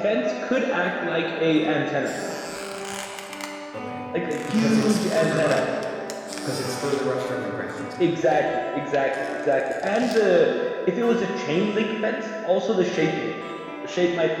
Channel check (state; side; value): identical; both; correlation 1.00